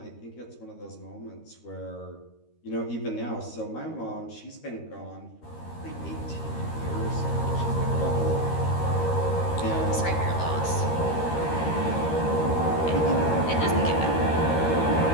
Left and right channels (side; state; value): right; late; 13 ms